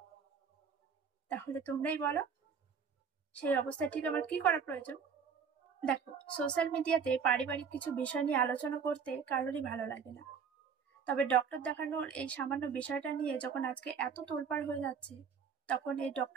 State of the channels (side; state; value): left; quieter; 6.4 dB